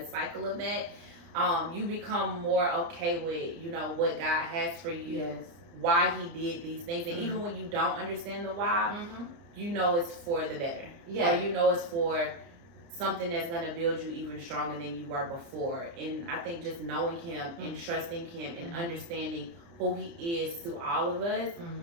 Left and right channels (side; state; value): left; late; 29 ms